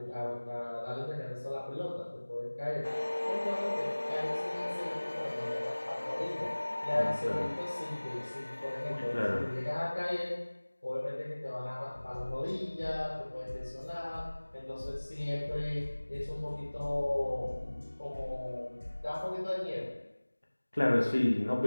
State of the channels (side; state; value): both; inverted; correlation -1.00